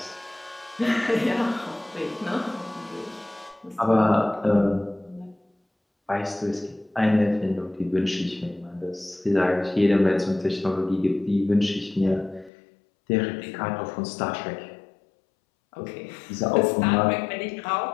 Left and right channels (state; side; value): drops out; right; at 12.5 s